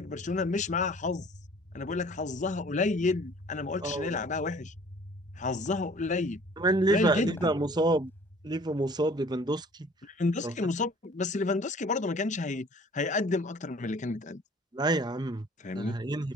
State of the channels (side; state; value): both; normal; correlation 0.51